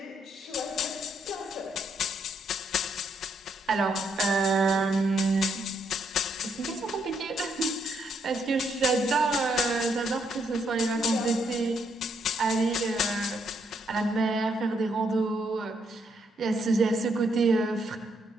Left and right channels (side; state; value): both; normal; correlation 0.74